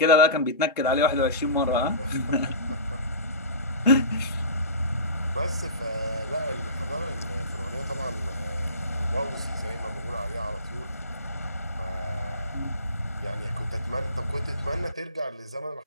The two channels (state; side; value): inverted; both; correlation -0.33